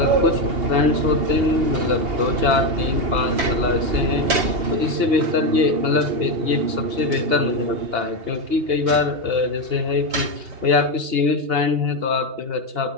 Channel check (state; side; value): late; left; 2.8 ms